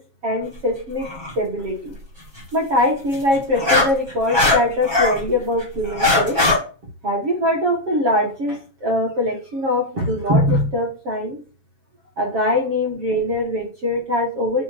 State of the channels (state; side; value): late; left; 7.3 ms